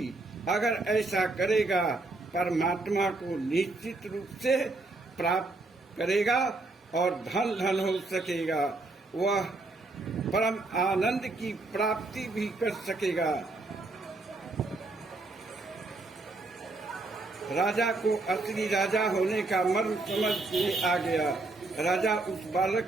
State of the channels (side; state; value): left; quieter; 3.2 dB